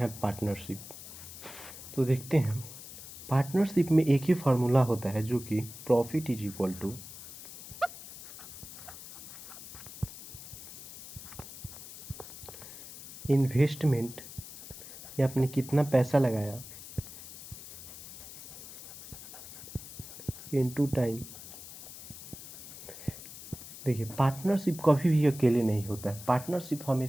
पार्टनरशिप। तो देखते हैं, पार्टनरशिप में एक ही फार्मूला होता है जो कि profit is equal to investment, या आपने कितना पैसा लगाया, इनटू टाइम। देखिए, पार्टनरशिप कभी भी अकेले नहीं होता है। पार्टनरशिप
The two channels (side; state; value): left; noise; hiss, 14 dB below the sound